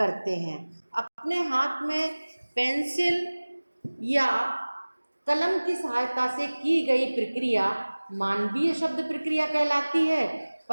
हैं। अपने हाथ में पेंसिल या कलम की सहायता से की गई प्रक्रिया मानवीय शब्द प्रक्रिया कहलाती है,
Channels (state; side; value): inverted; both; correlation -1.00